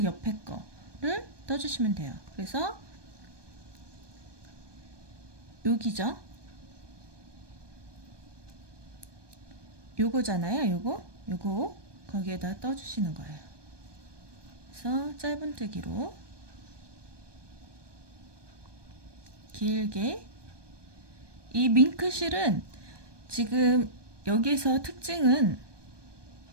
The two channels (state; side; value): late; left; 1.2 ms